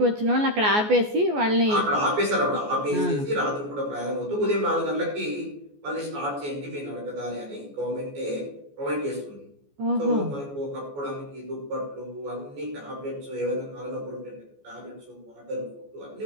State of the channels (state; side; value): late; left; 14 ms